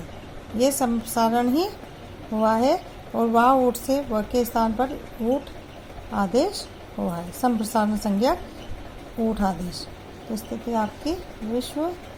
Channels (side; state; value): both; identical; correlation 1.00